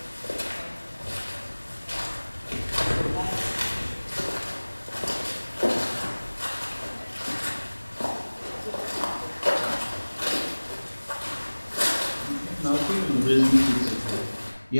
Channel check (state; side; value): inverted; both; correlation -1.00